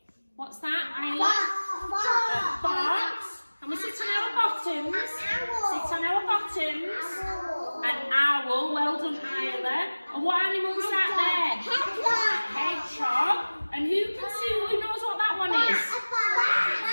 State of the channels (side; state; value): both; inverted; correlation -1.00